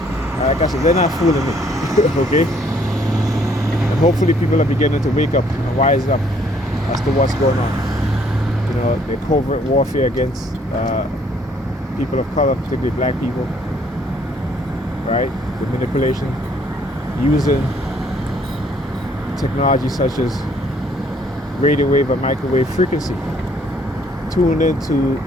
Like I said, they're not fooling me, okay? And hopefully people are beginning to wake up and rise up as to what's going on. You know, the covert warfare against people of color, particularly black people, right? The manipulation, using technology such as radio wave or microwave frequency, tuned into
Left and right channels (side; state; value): both; normal; correlation 0.64